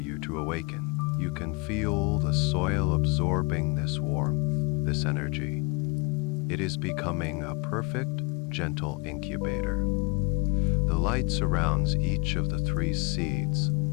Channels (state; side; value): quieter; right; 28.2 dB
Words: to awaken. You can feel the soil absorbing this warmth, this energy. It is becoming a perfect, gentle incubator. The light surrounds each of the 3 seeds,